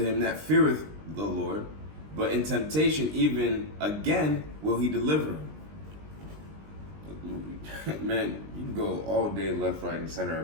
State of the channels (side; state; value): left; late; 20 ms